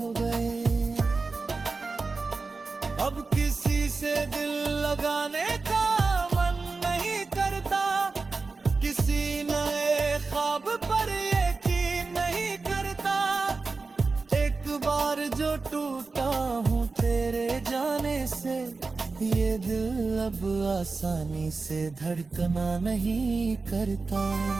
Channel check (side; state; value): left; quieter; 4.0 dB